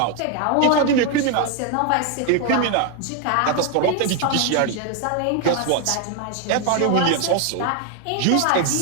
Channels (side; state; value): both; different; correlation 0.01